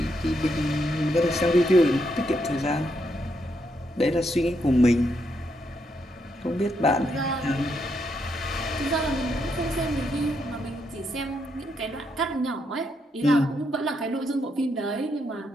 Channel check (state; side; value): normal; both; correlation 0.79